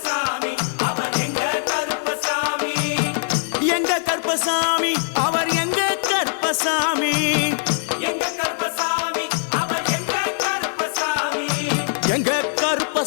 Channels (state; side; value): silent; right; digital silence